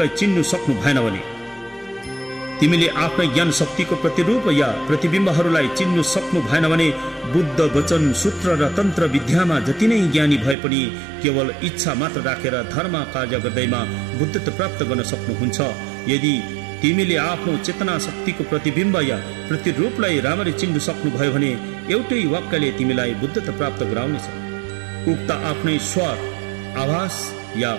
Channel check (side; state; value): left; drops out; at 10.6 s